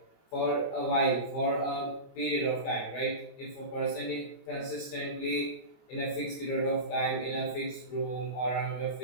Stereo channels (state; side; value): late; right; 25 ms